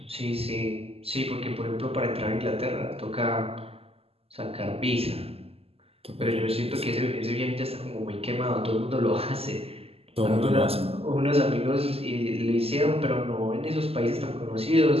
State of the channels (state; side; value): late; left; 0.29 ms